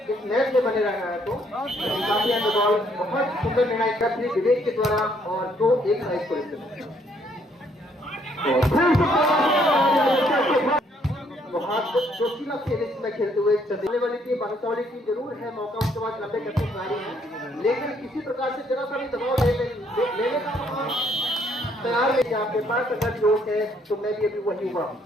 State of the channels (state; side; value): normal; both; correlation 0.68